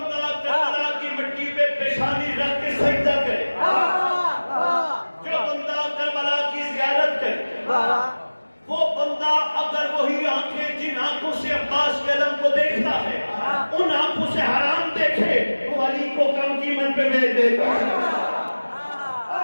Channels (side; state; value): both; inverted; correlation -1.00